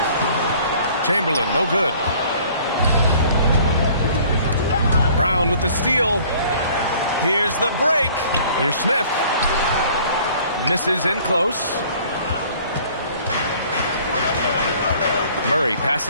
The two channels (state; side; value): inverted; both; correlation -0.53